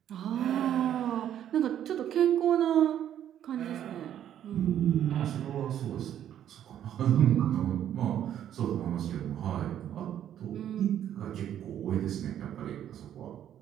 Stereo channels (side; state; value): left; quieter; 10.5 dB